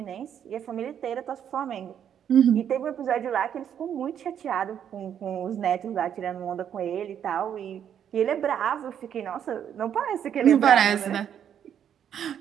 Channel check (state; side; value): quieter; left; 9.1 dB